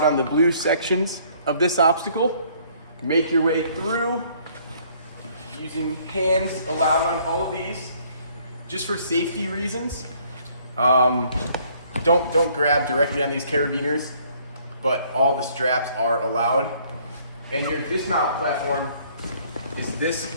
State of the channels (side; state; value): both; inverted; correlation -0.62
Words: on the blue sections of this obstacle. Make your way through using hands allowed on all of these. Just for safety reasons, don't grab directly on these carabiners, but all the straps are allowed. And your dismount platform is this